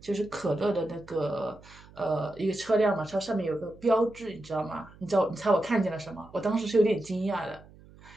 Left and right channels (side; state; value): right; noise; hum, 23 dB below the sound